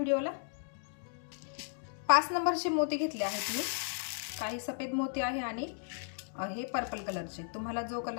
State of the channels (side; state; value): right; silent; digital silence